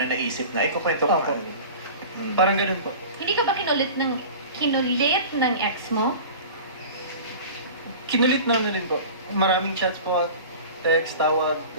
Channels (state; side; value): inverted; both; correlation -0.37